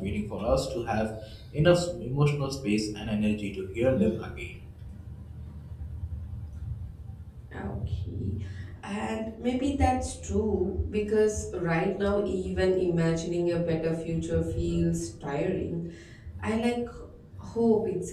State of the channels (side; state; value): both; identical; correlation 1.00